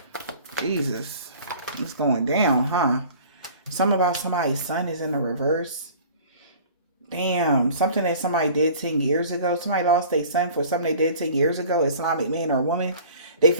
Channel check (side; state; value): both; inverted; correlation -0.46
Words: Jesus. It's going down, huh? Something about somebody's son is in the reverse. Damn. Something that somebody did 10 years ago. Somebody lost their son for something they did 10 years ago. Islamic man or woman. They